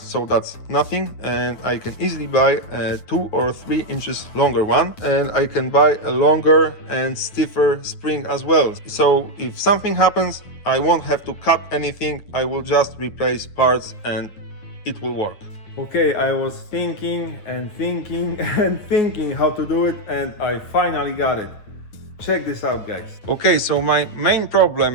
that's nothing, and I can easily buy a 2 or 3 inches longer one, and I can buy a longer and stiffer spring as well. So if something happens, I won't have to cut anything, I will just replace parts and it will work. Okay, I was thinking and thinking and thinking how to do it, and I finally got it. Check this out, guys. Okay, so my main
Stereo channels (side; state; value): right; late; 9.4 ms